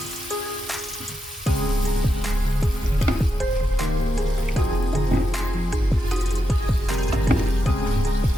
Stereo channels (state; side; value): normal; both; correlation 0.85